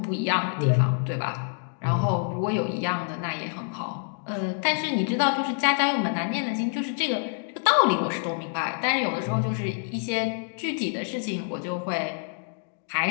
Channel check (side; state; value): right; silent; 59 dB below the other